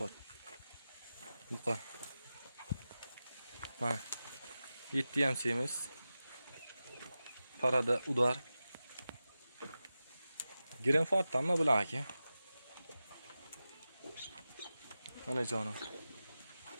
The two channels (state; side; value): inverted; both; correlation -0.94